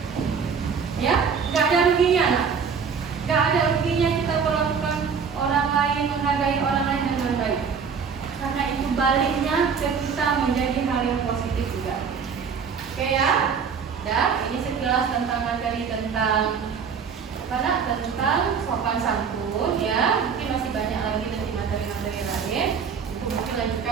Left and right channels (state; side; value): quieter; left; 6.3 dB